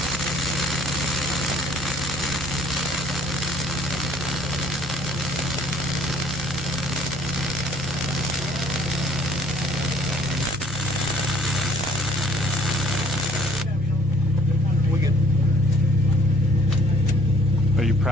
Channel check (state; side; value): normal; both; correlation 0.58